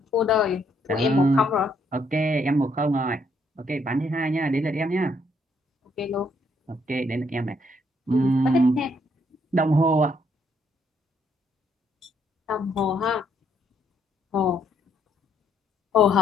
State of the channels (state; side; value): normal; both; correlation 0.71